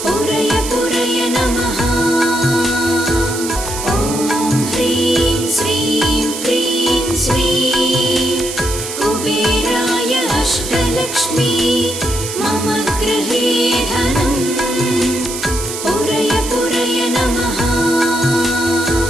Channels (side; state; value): right; noise; hiss, 7 dB below the sound